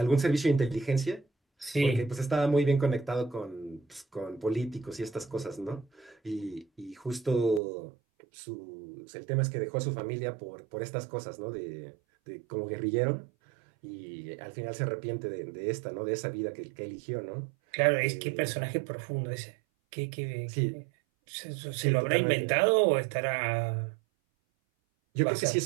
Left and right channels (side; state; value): left; drops out; at 7.6 s